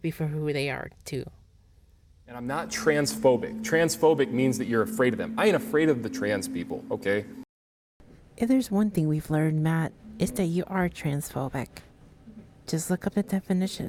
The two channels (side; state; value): both; identical; correlation 1.00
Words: for who they are, too. And I'm not transphobic. Transphobic means that you're afraid of them. I ain't afraid of the trans people, okay? If there's one thing we've learned, Matt, it's that you are transphobic. Just look up the